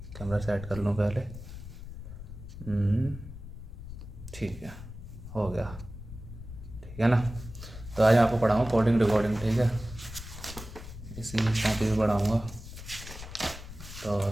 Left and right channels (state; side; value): noise; left; rumble, 12 dB below the sound